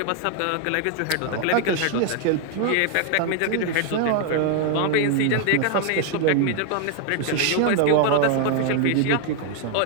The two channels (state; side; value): different; both; correlation 0.00